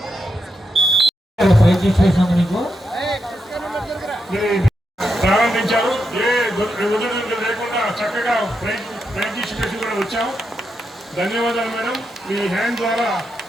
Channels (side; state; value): both; normal; correlation 0.84